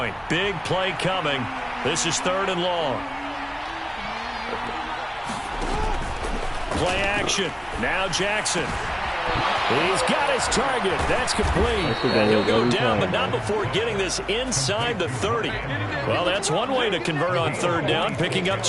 Big play coming. This is 3rd and long. Play action. Now Jackson. He's got his target. That's complete. And he'll go down, but not before getting this inside the 30. Well, that's one way to convert on 3rd down, picking up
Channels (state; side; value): identical; both; correlation 1.00